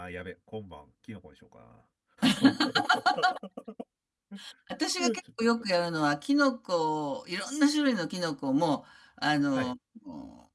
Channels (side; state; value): both; identical; correlation 1.00